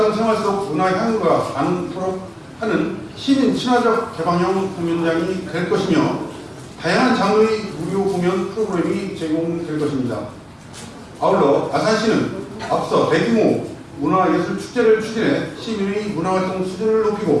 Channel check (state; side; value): identical; both; correlation 1.00